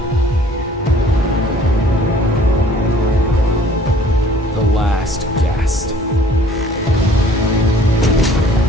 The last guest.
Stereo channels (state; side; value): normal; both; correlation 0.55